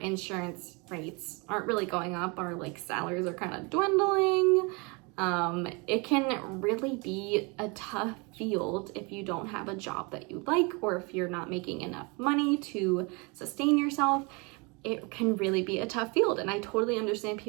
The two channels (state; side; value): quieter; left; 29.6 dB